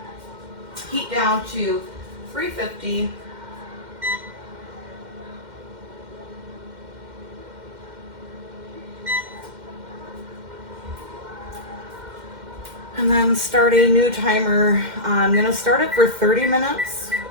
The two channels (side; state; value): left; late; 2.1 ms